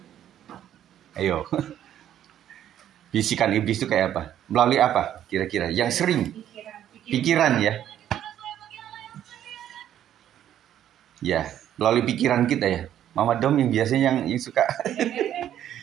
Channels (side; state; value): left; quieter; 10.9 dB